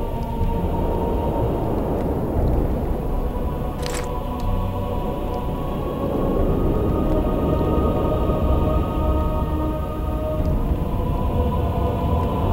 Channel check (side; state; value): both; identical; correlation 1.00